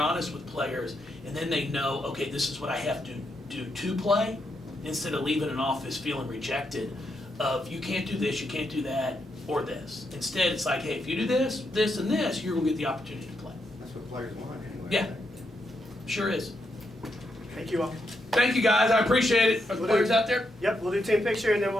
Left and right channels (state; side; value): normal; both; correlation 0.81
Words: honest with players, and then they know, okay, this is what I have to do to play, instead of leaving an office feeling rejected of you can't do this, you can't do that, or this. Instead, it's like, hey, if you do this, this, and this, you're going to get the opportunity to play. That's what players want anyway. Yeah, sure is. Thank you all. Thank you, guys. I appreciate it. Are the players out there? Yep, we'll do team picture and then